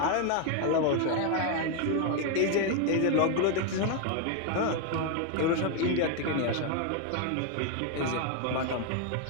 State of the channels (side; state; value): both; different; correlation 0.01